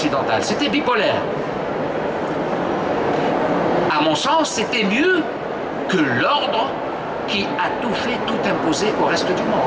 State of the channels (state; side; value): identical; both; correlation 1.00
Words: C'était bipolaire. À mon sens, c'était mieux que l'ordre qui a tout fait, tout imposé au reste du